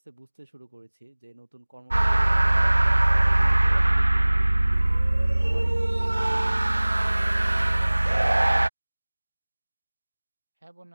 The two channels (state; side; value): inverted; both; correlation -1.00